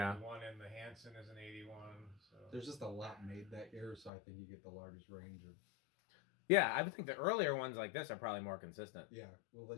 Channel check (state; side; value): drops out; right; at 4.1 s